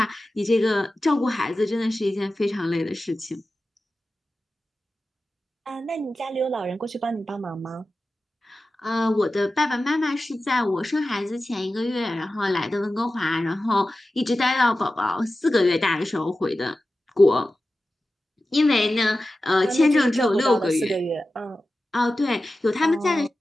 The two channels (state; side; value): normal; both; correlation 0.94